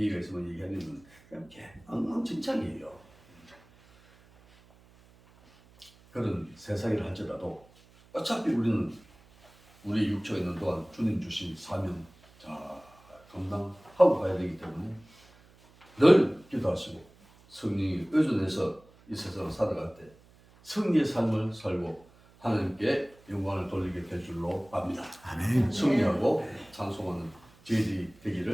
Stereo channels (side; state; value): right; noise; hum, 27 dB below the sound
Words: 있으면 얘기하는 그냥 엉망진창이에요. 그런 세상이라 할지라도 어차피 우리는 우리 육체가 있는 동안 주님 주신 사명 잘 감당하고 가야 되기 때문에 늘 기도하시고 성령이 의존해서 이 세상을 살아갈 때 승리의 삶을 살고 하나님께 영광을 돌리게 될 줄로 압니다. 아멘. 승리하고 찬송하는 저희들이